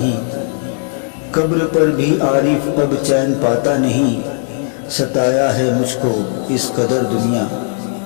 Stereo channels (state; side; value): silent; right; 55 dB below the other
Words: कब्र पर भी आरिफ अब चैन पाता नहीं, सताया है मुझको इस कदर दुनिया।